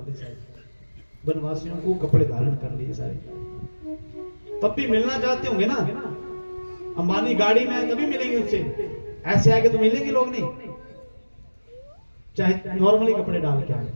सारे वनवासियों को कपड़े धारण कर लिए सारे। तब भी मिलना चाहते होंगे ना, अंबानी गाड़ी में आए तभी मिलेंगे उससे, ऐसे आगे तो मिलेंगे लोग नहीं। चाहे नॉर्मली कपड़े डाल के आए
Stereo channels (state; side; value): inverted; both; correlation -1.00